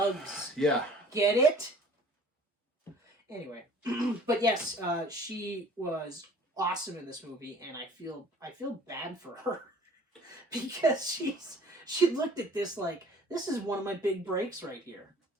Yeah. Get it? Anyway, but yes, she was awesome in this movie, and I feel bad for her because she looked at this this is one of my big breaks right here.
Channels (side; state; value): both; normal; correlation 0.50